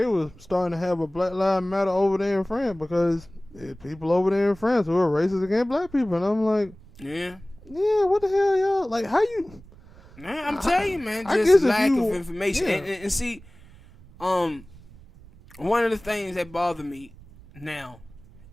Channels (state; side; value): noise; right; rumble, 22 dB below the sound